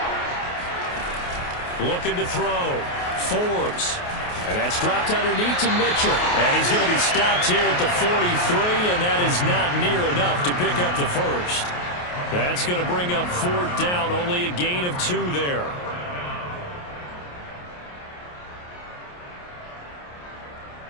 Looking to throw. Forbes. And that's dropped underneath to Mitchell. And he's going to be stopped here at the 43, and that is not near enough to pick up the first. That's going to bring up 4th down, only a gain of 2 there.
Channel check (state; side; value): late; right; 28 ms